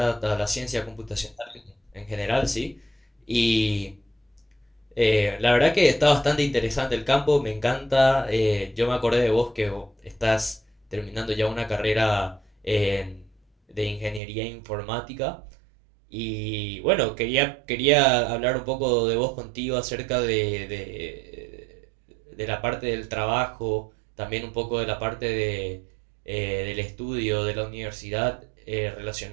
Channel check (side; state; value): left; drops out; at 14.2 s